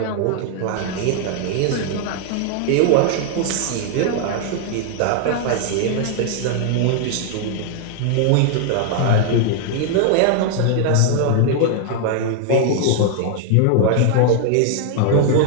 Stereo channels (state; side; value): different; both; correlation 0.00